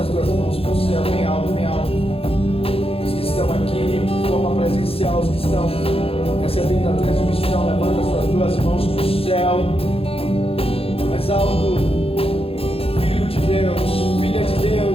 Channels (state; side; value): late; right; 0.27 ms